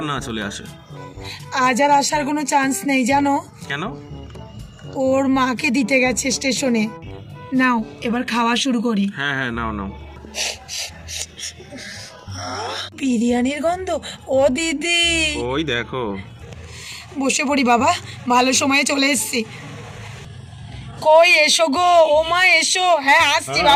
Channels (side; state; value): both; identical; correlation 1.00